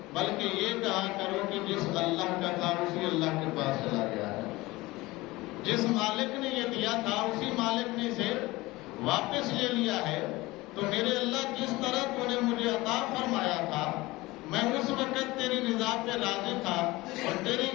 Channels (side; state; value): right; quieter; 20.4 dB